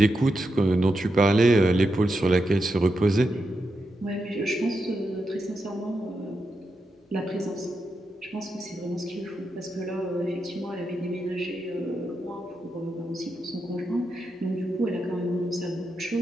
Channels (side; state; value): both; normal; correlation 0.86